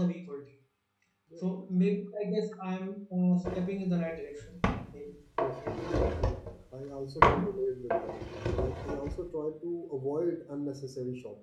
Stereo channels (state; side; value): identical; both; correlation 1.00